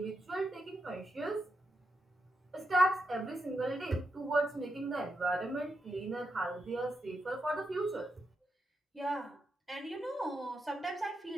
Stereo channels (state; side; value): normal; both; correlation 0.85